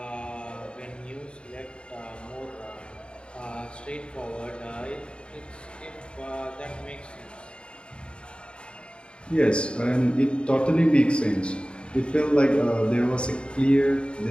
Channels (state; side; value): late; right; 0.054 ms